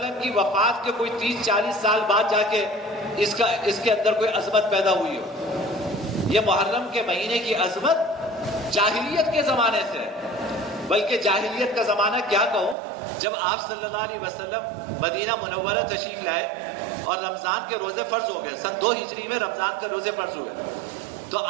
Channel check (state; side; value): drops out; left; at 12.8 s